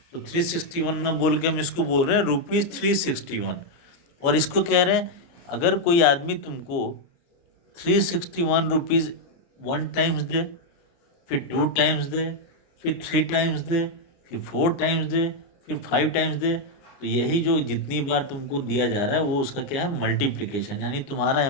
तो 361 में बोल के हम इसको बोल रहे हैं रुपीज़ 361। और इसको कह रहे हैं अगर कोई आदमी तुमको 361 रुपीज़ 1 टाइम्स दे, फिर 2 टाइम्स दे, फिर 3 टाइम्स दे, फिर 4 टाइम्स दे, फिर 5 टाइम्स दे, तो यही जो जितनी बार तुमको दिया जा रहा है वो उसका क्या है, मल्टीप्लिकेशन, यानी तुम्हारा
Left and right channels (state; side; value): late; right; 29 ms